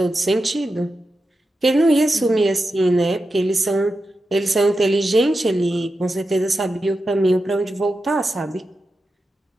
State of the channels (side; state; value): both; normal; correlation 0.90